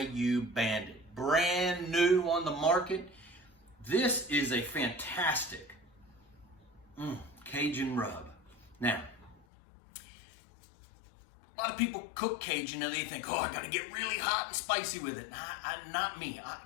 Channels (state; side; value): drops out; right; at 9.4 s